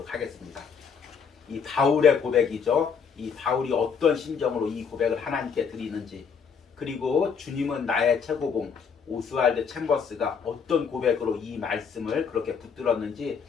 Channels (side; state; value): right; quieter; 6.3 dB